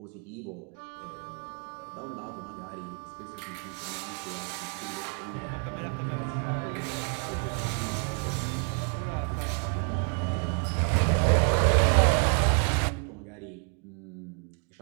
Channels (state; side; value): quieter; left; 38.4 dB